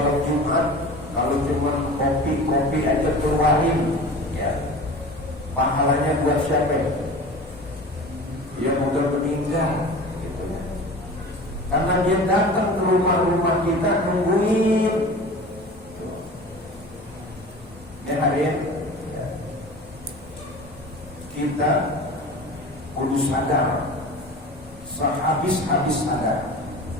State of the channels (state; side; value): normal; both; correlation 0.37